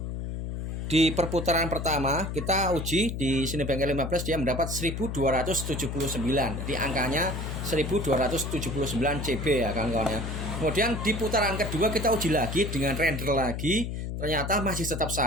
di perputaran pertama kita uji di Cinebench R15 dia mendapat 1279. Jadi angkanya 1279 CB ya kawan-kawan ya. Kemudian di putaran kedua kita uji lagi dengan render lagi, ternyata masih tetap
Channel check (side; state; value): left; noise; hum, 5 dB below the sound